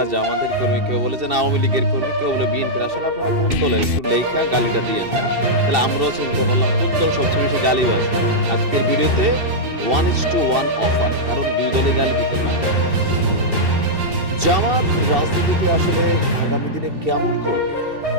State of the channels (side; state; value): left; late; 2.7 ms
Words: জামাতের কর্মী, কেউ বলে যে আওয়ামী লীগের কর্মী, কেউ বলে বিএনপির। আসলে আপনারা কোন দলের একটু লেখা গালিটা দিয়েন, হ্যাঁ? তাহলে আমরাও চিনতে পারলাম কোন দল সবচেয়ে বেশি গালিবাজ। আজকের ভিডিওতে 1:1 অফার, কারণ দুই দলে গালি দিতে পারে। জামাত রাজনীতিতে আসলে আগামী দিনে কেমন করবে?